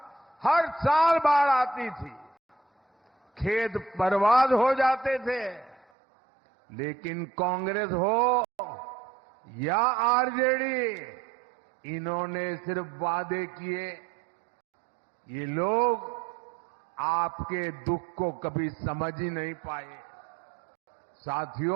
हर साल बाढ़ आती थी, खेत बर्बाद हो जाते थे। लेकिन कांग्रेस हो या आरजेडी, इन्होंने सिर्फ वादे किए। ये लोग आपके दुख को कभी समझ ही नहीं पाए।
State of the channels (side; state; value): left; drops out; at 5.9 s